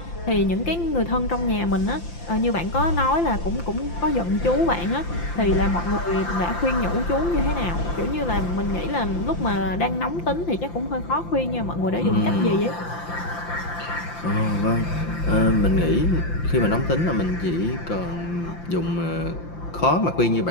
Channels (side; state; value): right; late; 5.8 ms